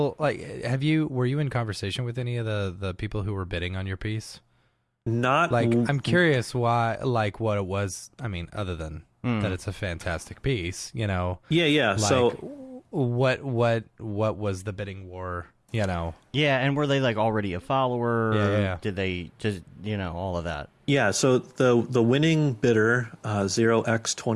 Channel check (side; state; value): both; identical; correlation 1.00